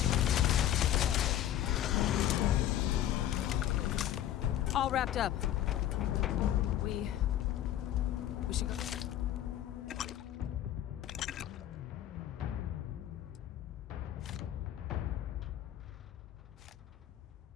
All wrapped up. We should go.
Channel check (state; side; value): quieter; right; 11.9 dB